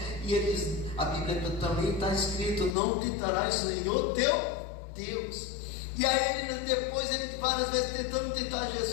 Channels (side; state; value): right; drops out; at 2.8 s